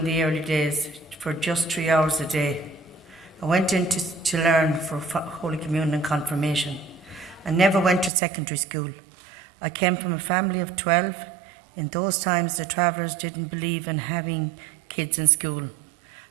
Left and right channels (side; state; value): left; drops out; at 8.1 s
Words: the early days for just 3 hours a day. I went in to learn for Holy Communion and Confirmation. I never went to secondary school. I came from a family of 12. In those times, the travellers didn't believe in having kids in school.